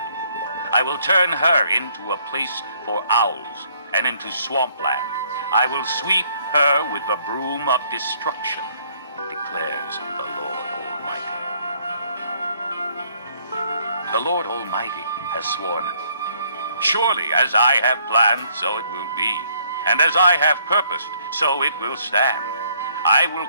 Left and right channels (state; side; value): inverted; both; correlation -0.65